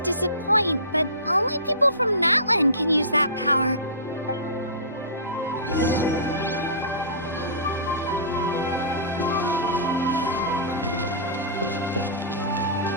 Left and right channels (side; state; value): both; inverted; correlation -0.31